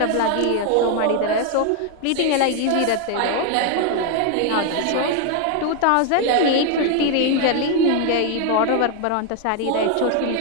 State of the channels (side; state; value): both; different; correlation 0.00